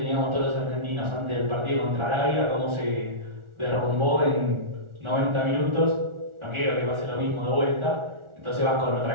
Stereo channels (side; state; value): left; late; 1.4 ms